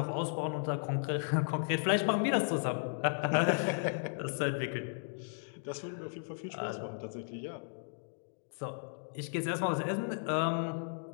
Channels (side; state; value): right; silent; digital silence